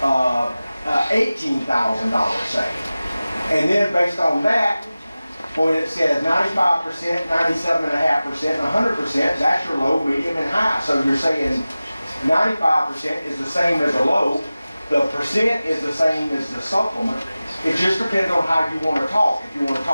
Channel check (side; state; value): both; inverted; correlation -0.97